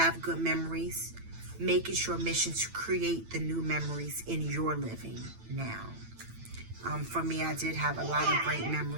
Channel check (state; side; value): late; left; 9.0 ms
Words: good memories, make it your mission to create the new memories in your living now. For me, I did have a lot of great